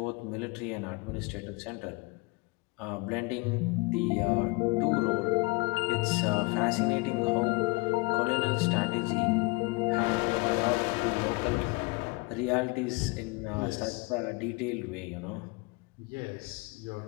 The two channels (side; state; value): right; quieter; 26.6 dB